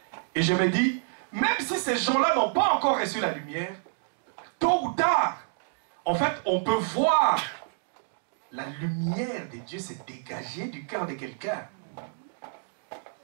Et je me dis, même si ces gens-là n'ont pas encore reçu la lumière, tôt ou tard, en fait, on peut voir la lumière de Dieu se dégager du cœur de quelqu'un.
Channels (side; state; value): left; silent; digital silence